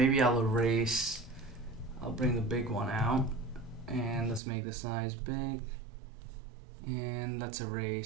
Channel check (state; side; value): drops out; left; at 4.4 s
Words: I'll bring the big one out, and let's make the size big, and let's